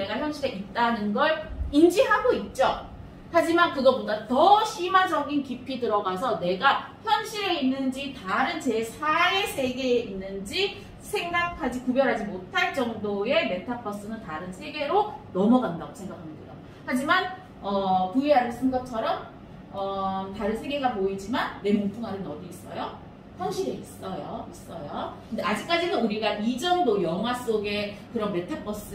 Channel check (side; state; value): both; identical; correlation 1.00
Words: 현실에 있다는 걸 인지하고 있죠. 하지만 그거보다 더 심화적인 깊이 들어가서 내가 현실에 있는지 다른 제4의 세계에 있는지 구별하지 못할 정도의 메타버스는 다른 세계로 넘어간다고 생각하면 돼요. 하지만 VR을 쓴 것처럼 다른 세계가 보이지만 내 몸뚱아리는 어디 있어요? 현실에 있어요. 근데 아직까지는 우리가 이 정도 영화 속의 그런